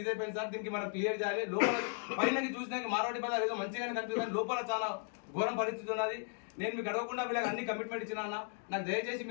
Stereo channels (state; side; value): silent; right; 54 dB below the other